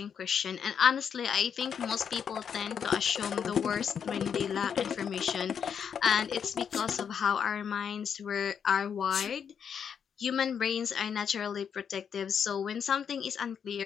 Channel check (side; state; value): right; quieter; 7.5 dB